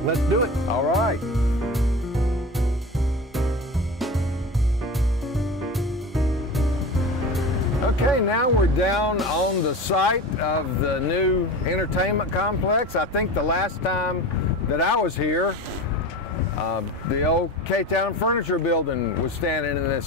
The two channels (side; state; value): both; normal; correlation 0.30